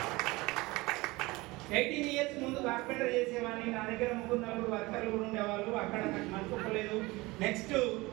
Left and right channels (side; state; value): left; quieter; 22.0 dB